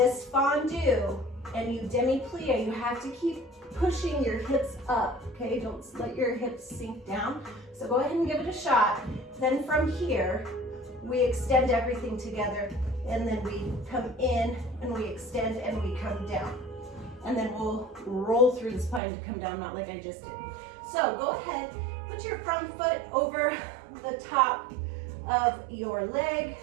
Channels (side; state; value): left; drops out; at 19.0 s